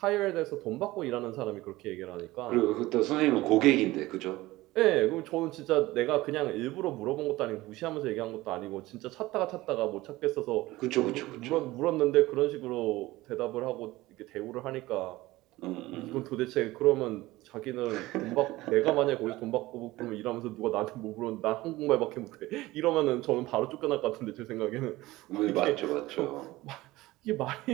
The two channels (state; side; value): quieter; left; 18.6 dB